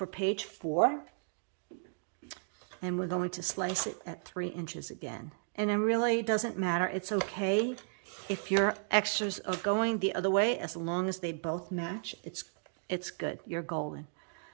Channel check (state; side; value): silent; left; digital silence